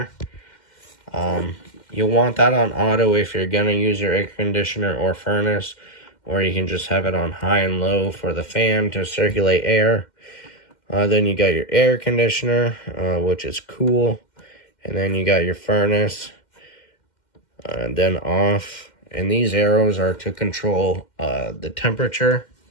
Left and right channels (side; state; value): right; late; 2.1 ms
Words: You'll want that on auto if you're going to use your air conditioner or furnace. Or you can just have it on high and low for the fan to circulate air. Then you got your air conditioner, which is cool. And then you got your furnace, then off. And these arrows are to control the temperature.